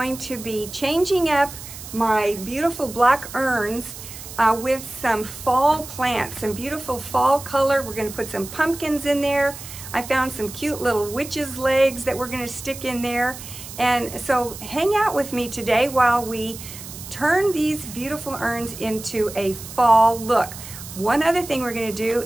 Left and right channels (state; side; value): noise; right; hiss, 13 dB below the sound